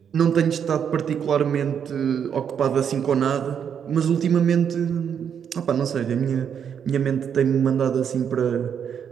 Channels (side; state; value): left; quieter; 7.9 dB